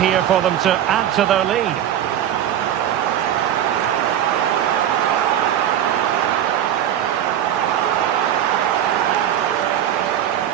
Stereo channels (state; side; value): quieter; left; 10.7 dB